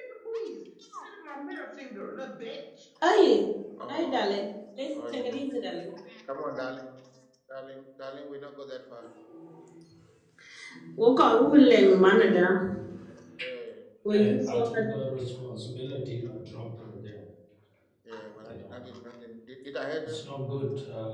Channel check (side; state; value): both; identical; correlation 1.00